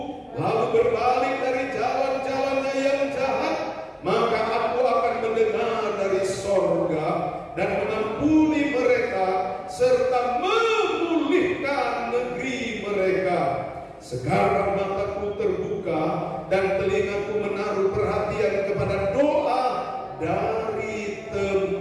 lalu berbalik dari jalan-jalannya yang jahat, maka aku akan mendengar dari sorga dan mengampuni mereka serta memulihkan negeri mereka. Sekarang mataku terbuka dan telingaku menaruh perhatian kepada doa dari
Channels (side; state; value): both; identical; correlation 1.00